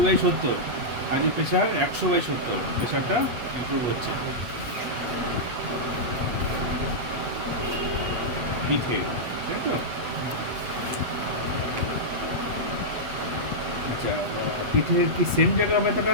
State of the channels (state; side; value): late; left; 8.3 ms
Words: আজকে প্রেশার 100/70, প্রেশারটা ইমপ্রুভ হচ্ছে পিঠে, তাই তো? আচ্ছা, পিঠের কি সেম জায়গা ব্যথাটা